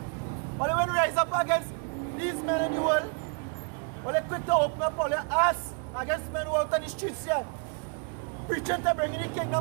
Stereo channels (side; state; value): left; quieter; 39.5 dB